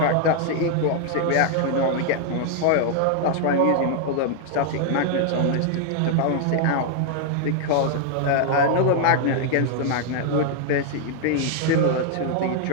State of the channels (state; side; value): different; both; correlation 0.00